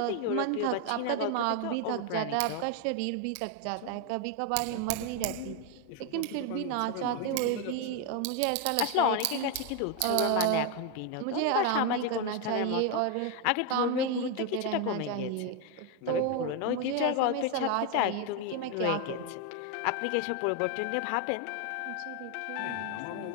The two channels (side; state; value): both; different; correlation 0.01